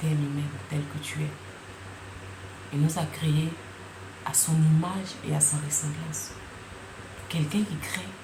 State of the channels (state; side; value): identical; both; correlation 1.00